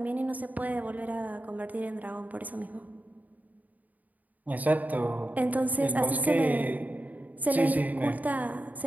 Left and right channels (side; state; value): left; late; 0.077 ms